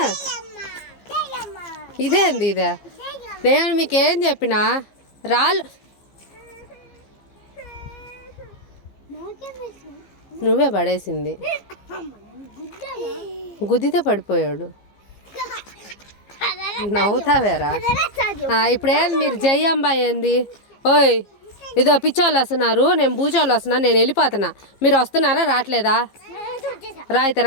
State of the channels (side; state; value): right; late; 15 ms